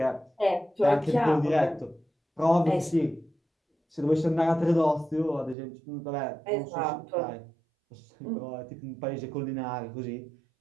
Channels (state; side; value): drops out; left; at 5.6 s